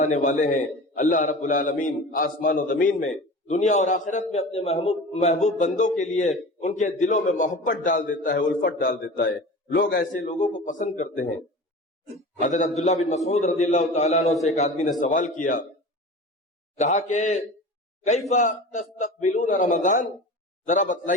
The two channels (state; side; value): normal; both; correlation 0.35